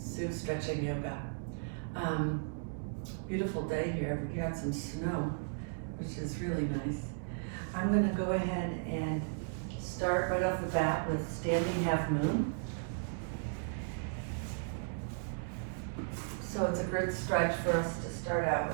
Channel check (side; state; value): left; silent; digital silence